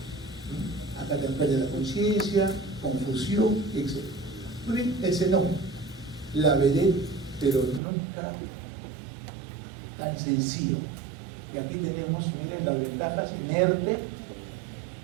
Acá te pierde la conciencia, confusión, etc. Muy bien, el xenón, la vedette, pero nunca tan sencillo. Y aquí tenemos, miren, las ventajas: inerte,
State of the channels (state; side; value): drops out; left; at 7.8 s